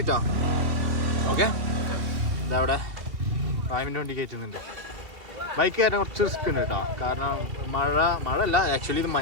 ഓക്കെ, ഇതവിടെ ഫാമിൻ്റെ വണ്ടി കയറ്റുന്നുണ്ട്. ബൈക്ക് കയറാൻ കുറച്ച് റിസ്ക് ഉണ്ട് കേട്ടോ. കാരണം മഴ അല്ല, ആക്ച്വലി ഇത്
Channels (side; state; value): left; late; 2.7 ms